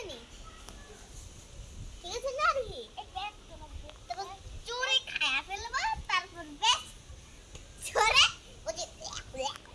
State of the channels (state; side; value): identical; both; correlation 1.00